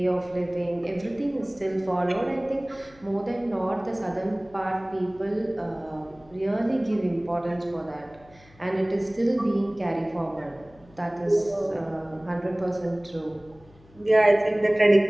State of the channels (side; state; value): left; noise; hum, 26 dB below the sound